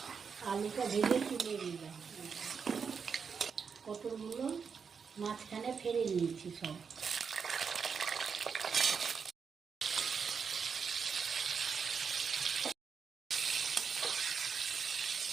আলুটা ভেজে তুলে দিলাম। পটলগুলো মাঝখানে ফেলে নিয়েছি সব।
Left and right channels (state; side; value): quieter; left; 6.1 dB